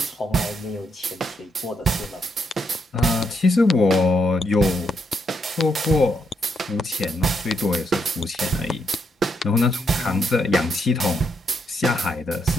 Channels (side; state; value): both; normal; correlation 0.78